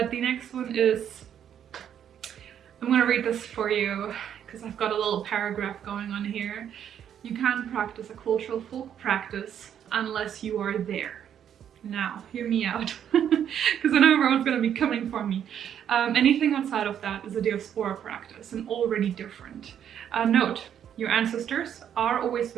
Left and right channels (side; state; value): left; quieter; 9.3 dB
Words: the next one is, I'm gonna read this for you because I've got a little paragraph going on here. You can't practice a cultural folk practice unless you are there. Now, hear me out, because I know everyone's going to be coming for me. Anything outside of that is a diaspora practice and already different. Note, your ancestors are always